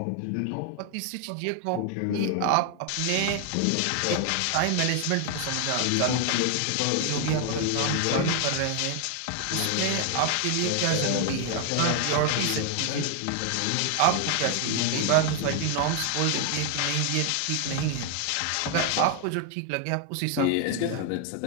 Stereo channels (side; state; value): both; different; correlation 0.00